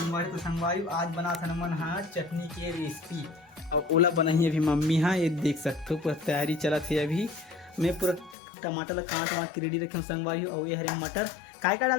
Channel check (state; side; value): drops out; right; at 8.3 s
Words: तो संगवारी आज बना था मन हाँ चटनी की रेसिपी और ओला बनाई अभी मम्मी। हाँ ये देख सकते हो पूरा तैयारी चला थी। अभी मैं पूरा टमाटर ला काट वाट के रेडी रखे हूँ संगवारी। और ये हरे मटर काय का